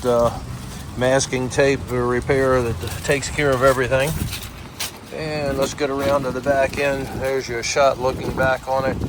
masking tape repair that takes care of everything. And let's get around to the back end. There's your shot looking back on it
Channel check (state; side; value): identical; both; correlation 1.00